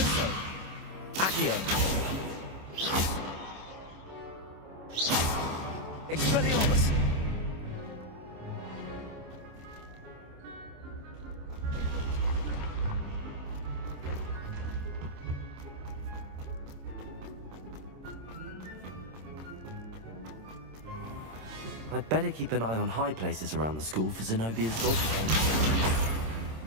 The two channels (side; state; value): left; late; 26 ms